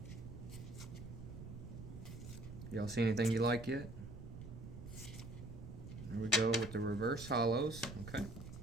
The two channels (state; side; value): noise; right; rumble, 11 dB below the sound